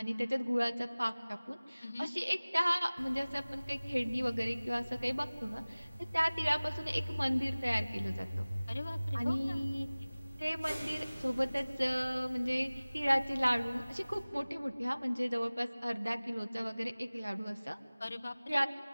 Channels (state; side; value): inverted; both; correlation -0.99